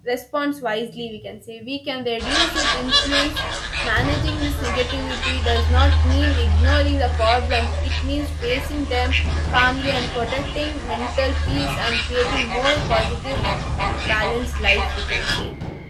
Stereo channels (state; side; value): identical; both; correlation 1.00